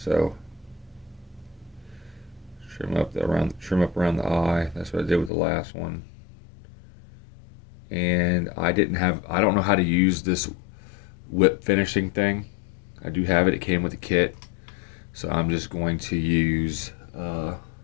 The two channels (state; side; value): drops out; right; at 5.3 s